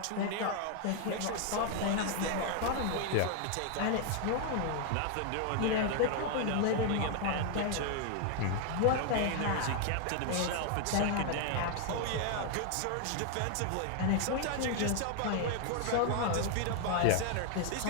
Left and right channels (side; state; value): both; different; correlation 0.00